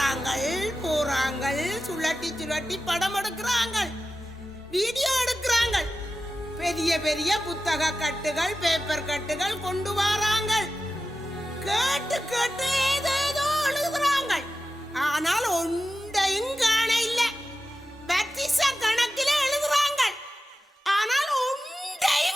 போறாங்கள், சுழட்டி சுழட்டி படம் எடுக்கிறாங்க, வீடியோ எடுக்கிறாங்க, பெரிய பெரிய புத்தக கட்டுகள் பேப்பர் கட்டுகள் கொண்டு வராங்க, கேட்டு கேட்டு ஏதேதோ எழுதுறாங்க. ஆனால் ஒன்றையும் காண இல்ல. பத்திச கணக்கில் எழுதுறாங்க, ஆனால்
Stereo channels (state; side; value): normal; both; correlation 0.93